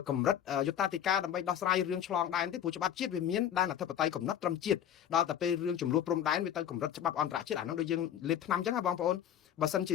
កម្រិតយុត្តាធិការដើម្បីដោះស្រាយរឿងឆ្លងដែនទេព្រោះច្បាប់ជាតិវាមានដែនអធិបតេយ្យកំណត់ត្រឹមជាតិដល់តែពេលរឿងចំនួនព្រំដែនវាទៅកម្រិតច្បាប់អន្តរជាតិអាហ្នឹងដូចយើងលេបថ្នាំអញ្ចឹងហ៎បងប្អូនបើសិនជា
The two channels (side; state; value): right; quieter; 10.1 dB